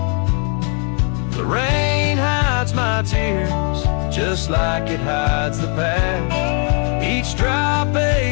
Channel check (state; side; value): quieter; right; 39.8 dB